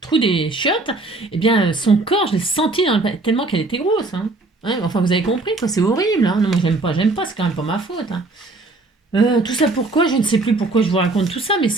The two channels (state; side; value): quieter; left; 3.2 dB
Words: des chiottes. Eh bien, son corps, je l'ai senti tellement qu'elle était grosse. Hein. Ouais, enfin, vous avez compris, quoi, c'est horrible. Hein. Non, moi j'aime pas, c'est quand même pas ma faute. Hein. Tout ça pourquoi? Je ne sais plus pourquoi je vous raconte tout ça, mais